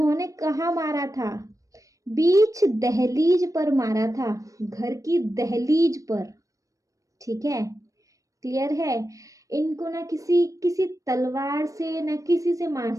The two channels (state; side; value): late; left; 0.16 ms